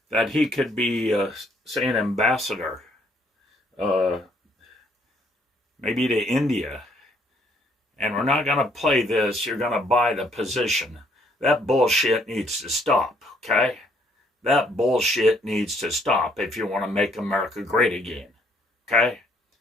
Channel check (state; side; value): normal; both; correlation 0.67